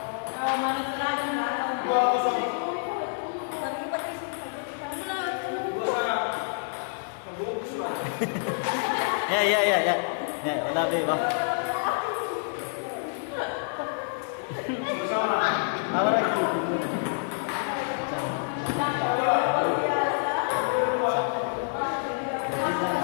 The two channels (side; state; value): right; silent; digital silence